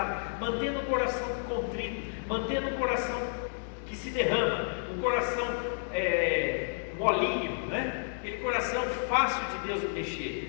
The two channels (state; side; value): silent; right; 57 dB below the other